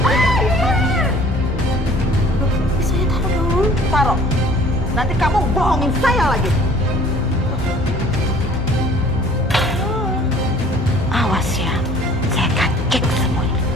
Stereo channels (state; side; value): normal; both; correlation 0.52